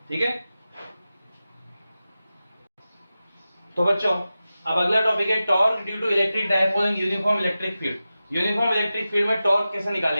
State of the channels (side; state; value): both; inverted; correlation -0.94